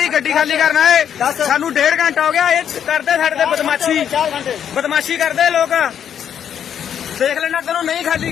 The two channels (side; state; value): right; quieter; 8.8 dB